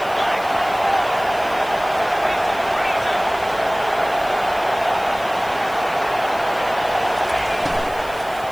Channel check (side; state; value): left; noise; hiss, 20 dB below the sound